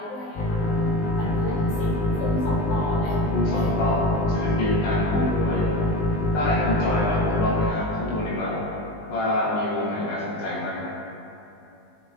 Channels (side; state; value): right; late; 19 ms